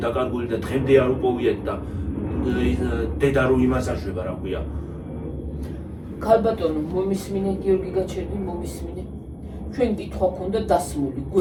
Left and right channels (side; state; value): both; identical; correlation 1.00